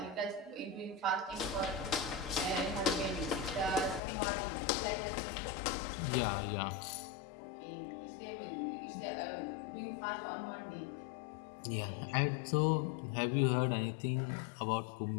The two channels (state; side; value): drops out; right; at 4.0 s